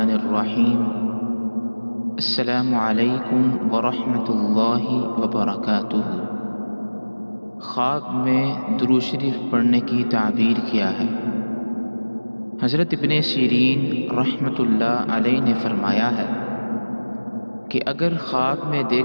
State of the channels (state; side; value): inverted; both; correlation -1.00